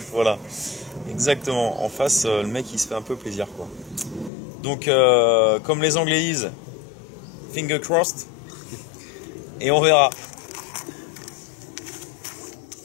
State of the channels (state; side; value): drops out; right; at 4.3 s